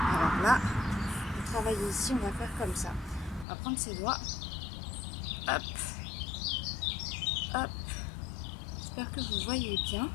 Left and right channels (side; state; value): right; drops out; at 3.5 s